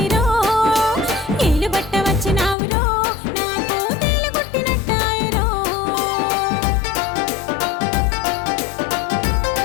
ఏలు బట్ట వచ్చినావురో నాకు తేలు కొట్టినట్టాయరో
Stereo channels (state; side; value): drops out; right; at 2.6 s